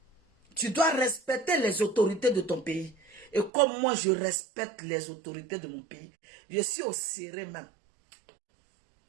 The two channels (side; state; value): left; drops out; at 3.5 s